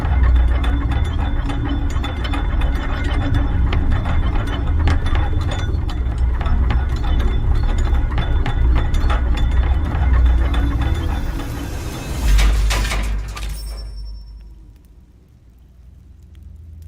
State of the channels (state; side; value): identical; both; correlation 1.00